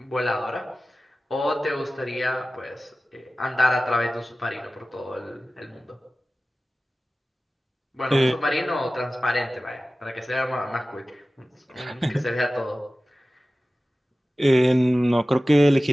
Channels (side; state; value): both; normal; correlation 0.96